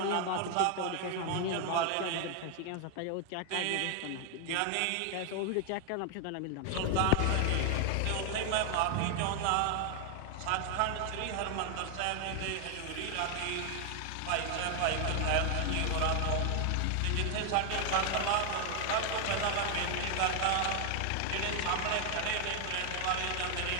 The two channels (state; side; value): different; both; correlation 0.00